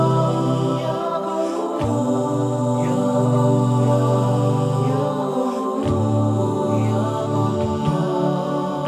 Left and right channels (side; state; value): both; identical; correlation 1.00